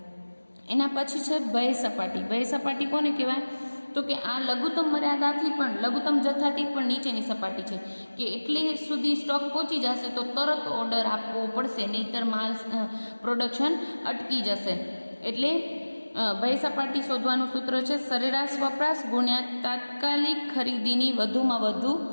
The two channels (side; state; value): both; inverted; correlation -1.00